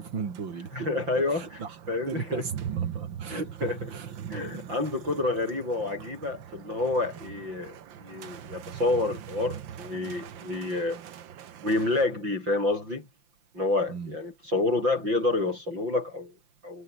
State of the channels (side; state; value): left; late; 5.8 ms